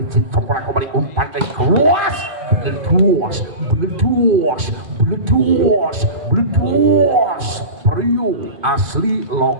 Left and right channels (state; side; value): late; left; 2.5 ms